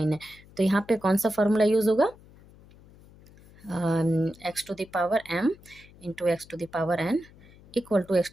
है, तो यहाँ पे कौन सा फॉर्मूला यूज होगा, x to the power m into x to the power n equal to x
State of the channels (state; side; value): noise; left; hum, 24 dB below the sound